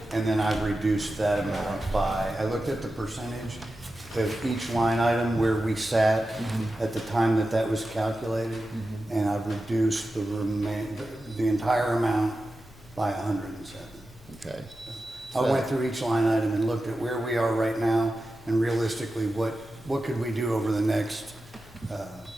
and then I've reduced that amount by, I looked at the percentage of each line item where we sat at the time that that was calculated, and I've reduced the entire amount by 107. Okay. I went through each line item and looked at where we are right now, and realistically, what could we do over the next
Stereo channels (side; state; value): both; normal; correlation 0.92